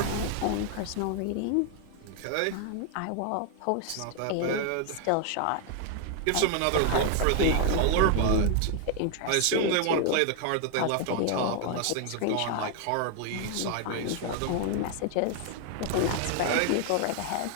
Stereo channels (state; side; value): different; both; correlation 0.00